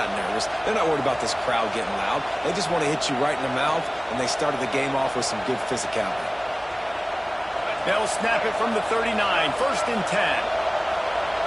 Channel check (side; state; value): both; identical; correlation 1.00